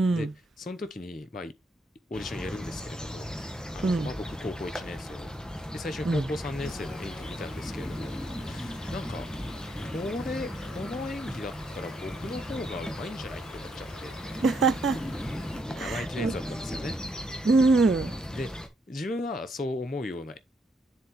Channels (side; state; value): both; normal; correlation 0.76